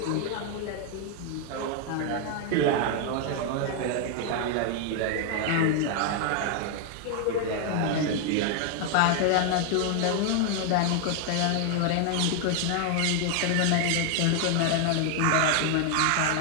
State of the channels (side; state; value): both; different; correlation 0.00